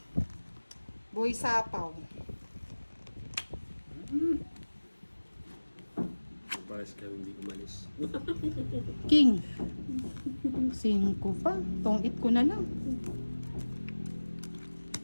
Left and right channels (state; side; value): inverted; both; correlation -1.00